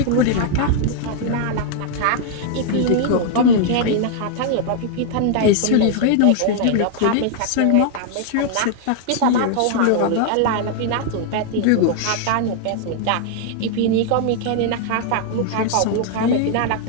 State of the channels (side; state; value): both; different; correlation -0.01